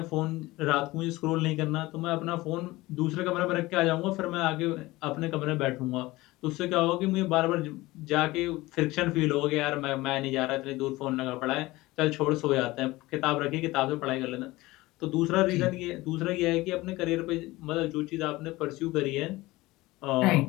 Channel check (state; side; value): quieter; right; 19.6 dB